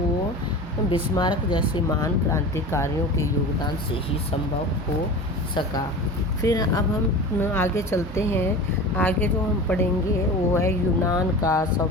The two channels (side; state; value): both; normal; correlation 0.33